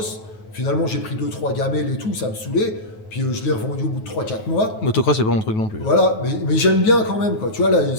Finalement, j'ai pris 2-3 gamelles et tout, ça me saoulait. Puis je l'ai revendu au bout de 3-4 mois. Motocross, c'est pas mon truc non plus. Voilà, mais j'aime bien quand même, quoi. Tu vois, là,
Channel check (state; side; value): late; right; 9.2 ms